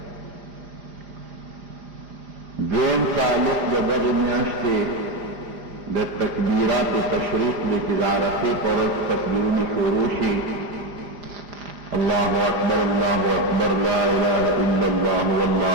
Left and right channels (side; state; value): left; late; 4.9 ms